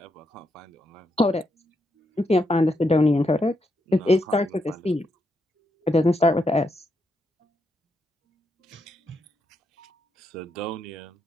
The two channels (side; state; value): both; normal; correlation 0.81